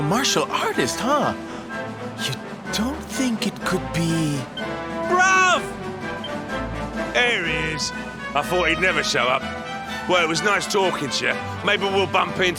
martial artist, huh? You don't think it could be... Bruv! There he is. I thought he'd never show up. Well, it was nice talking to you. Maybe we'll bump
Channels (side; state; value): both; identical; correlation 1.00